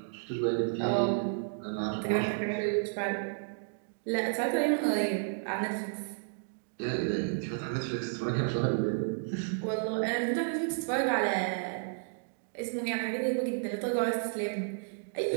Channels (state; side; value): silent; left; digital silence